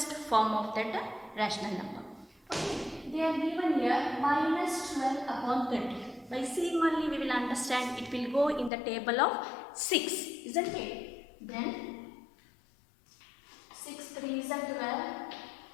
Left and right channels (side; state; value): right; drops out; at 8.7 s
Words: form of that rational number. Okay, they are given here minus 12 upon 30. By seeing only we will understand it will go in the table of 6, isn't it? Then 6 3 is 12,